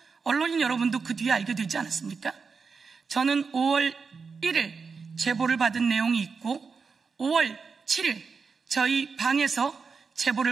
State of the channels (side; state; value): left; quieter; 5.1 dB